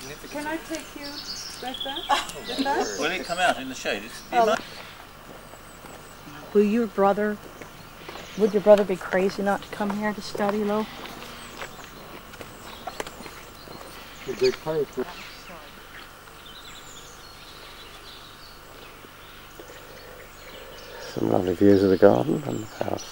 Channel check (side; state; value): both; identical; correlation 1.00